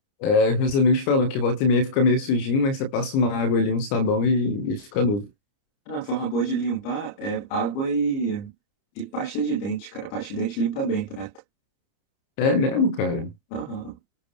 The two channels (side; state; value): right; late; 30 ms